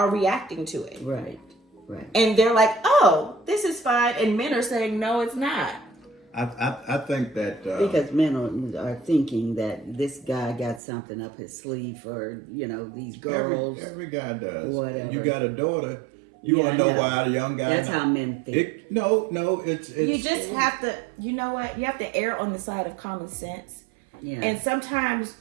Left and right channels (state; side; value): drops out; left; at 10.8 s